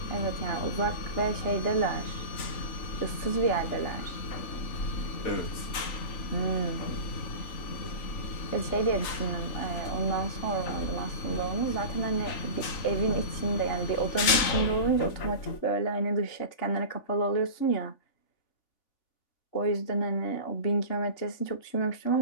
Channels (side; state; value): right; late; 3.5 ms